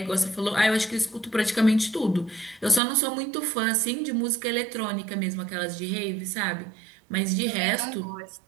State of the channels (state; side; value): drops out; left; at 2.8 s